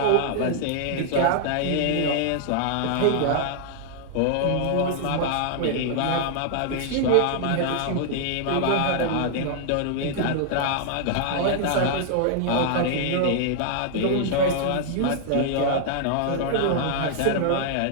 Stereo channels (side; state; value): both; different; correlation 0.00